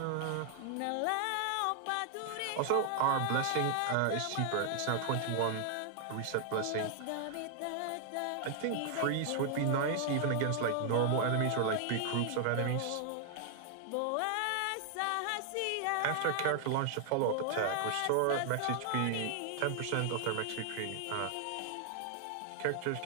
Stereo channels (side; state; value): both; different; correlation 0.00